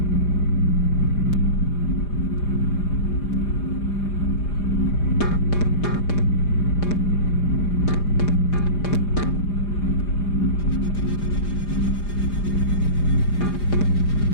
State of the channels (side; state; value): right; late; 4.9 ms